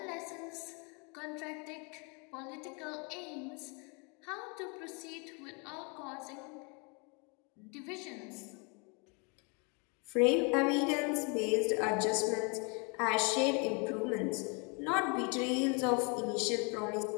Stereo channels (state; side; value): quieter; right; 33.6 dB